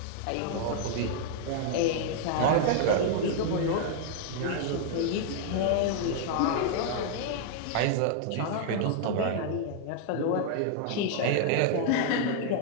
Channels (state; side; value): different; both; correlation -0.01